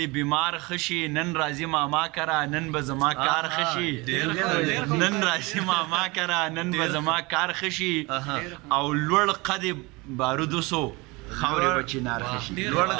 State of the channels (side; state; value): left; quieter; 24.8 dB